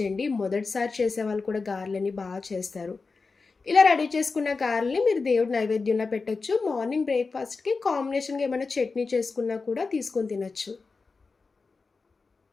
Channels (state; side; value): quieter; right; 4.3 dB